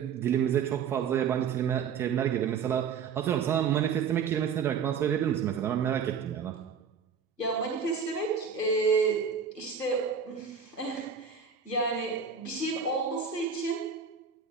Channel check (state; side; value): quieter; left; 6.6 dB